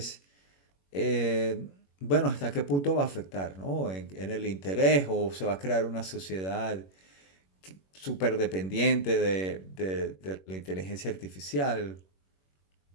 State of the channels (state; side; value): late; right; 21 ms